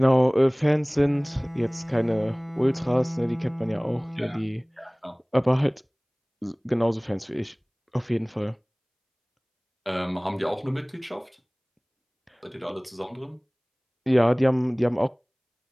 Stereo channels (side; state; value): both; identical; correlation 1.00